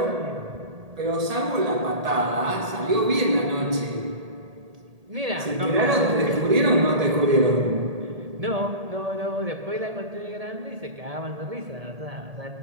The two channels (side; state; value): left; late; 1.8 ms